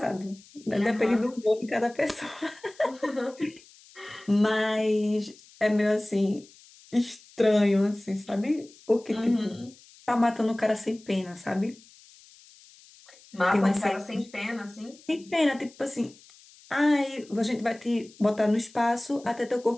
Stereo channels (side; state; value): left; noise; hiss, 25 dB below the sound